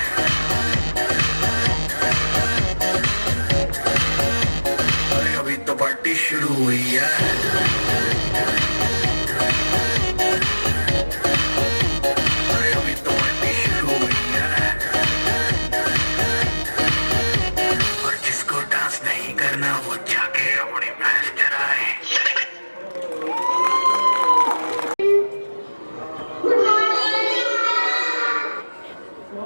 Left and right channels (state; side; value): inverted; both; correlation -1.00